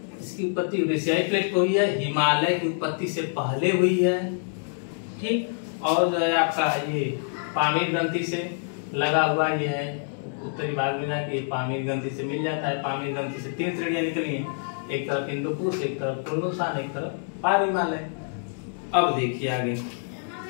इसकी उत्पत्ति यूरेशियाई प्लेट पे हुई है, हिमालय की उत्पत्ति से पहले हुई है। ठीक, और जो है आपका ये पामीर ग्रंथि से लगा हुआ ये है, उत्तरी भाग में जाके पामीर ग्रंथि से मिल जाता है। पामीर ग्रंथि से तीन श्रेणियां निकली हैं, एक तरफ हिंदू कुश, एक तरफ कुनलुन सान, एक तरफ पार हिमालय। अब देखिए आगे,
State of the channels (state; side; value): silent; right; digital silence